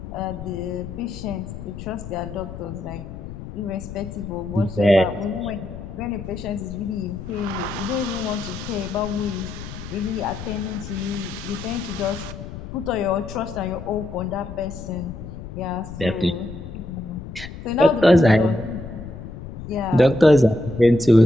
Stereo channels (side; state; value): left; noise; rumble, 11 dB below the sound